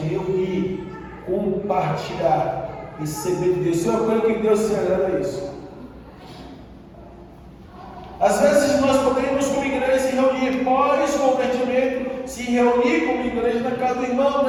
compartilhar, receber de Deus. Isso é uma coisa que Deus se agrada a isso. Às vezes nós podemos, como igreja, se reunir pós-convertimento, se reunir como igreja na casa do irmão,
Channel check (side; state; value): both; identical; correlation 1.00